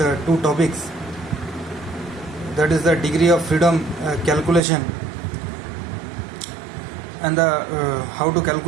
two topics, that is the degree of freedom calculation and the how to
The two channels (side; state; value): left; drops out; at 4.6 s